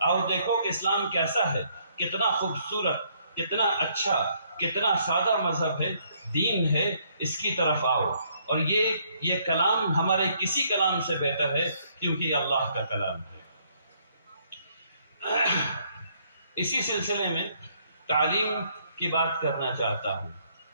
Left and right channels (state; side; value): inverted; both; correlation -0.68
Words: آؤ دیکھو کہ اسلام کیسا ہے، کتنا خوبصورت، کتنا اچھا، کتنا سادہ مذہب ہے، دین ہے، اس کی طرف آؤ۔ اور یہ کلام ہمارے کسی کلام سے بہتر ہے کیونکہ یہ اللہ کا کلام ہے۔ اسی سلسلے میں تعلیم کی بات کرنا چاہتا ہوں۔